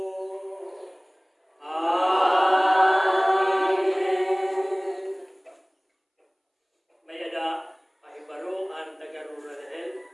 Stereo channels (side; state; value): both; identical; correlation 1.00